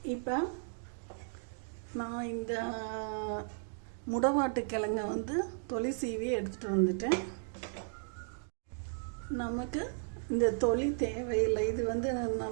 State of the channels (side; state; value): left; silent; digital silence